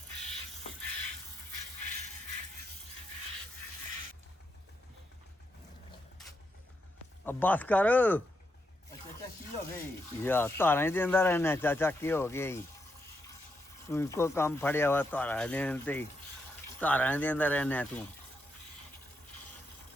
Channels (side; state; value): both; normal; correlation 0.81